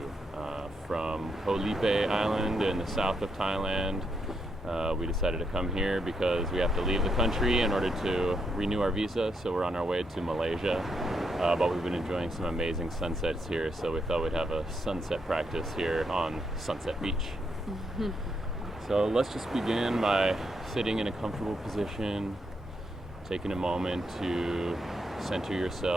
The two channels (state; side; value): normal; both; correlation 0.79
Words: from Koh Lipe Island in the south of Thailand. We decided to come here because we have to leave the country in order to renew our visa, so we're on our way to Malaysia. But we've been enjoying some amazing sunsets here, so we thought we'd have a sunset practice here on Sunset Beach. So let's just begin by sitting in a comfortable position, taking a moment to center